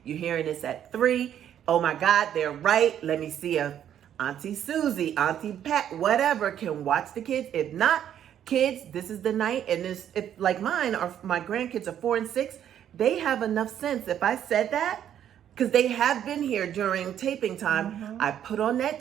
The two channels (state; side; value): quieter; left; 10.1 dB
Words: You're hearing this at 3. Oh my God, they're right. Let me see if Auntie Susie, Auntie Pat, whatever, can watch the kids. If not, kids, this is the night. And if like mine or my grandkids are 4 and 6, they have enough sense. If I said that, because they have been here during taping time, I put on that